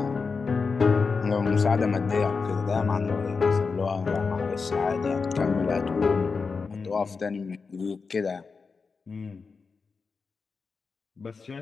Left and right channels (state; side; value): quieter; right; 4.8 dB